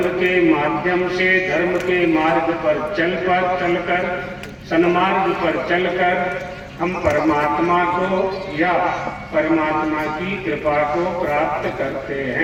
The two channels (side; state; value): both; identical; correlation 1.00